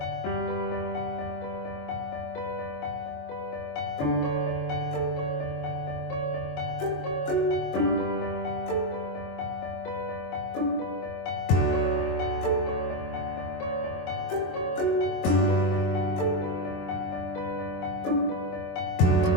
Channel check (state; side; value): late; right; 22 ms